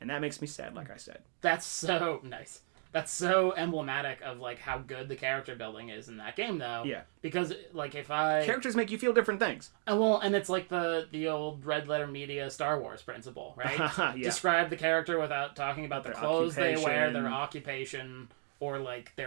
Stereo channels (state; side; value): silent; left; 55 dB below the other